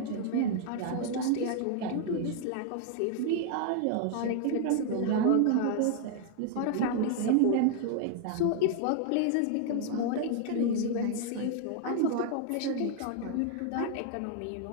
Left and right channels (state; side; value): different; both; correlation 0.00